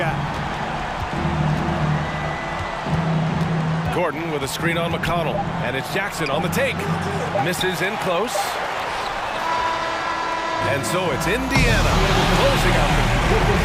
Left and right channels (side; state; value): both; identical; correlation 1.00